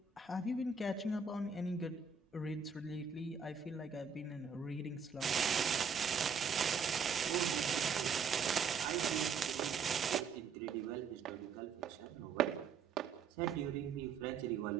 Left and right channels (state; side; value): quieter; left; 5.7 dB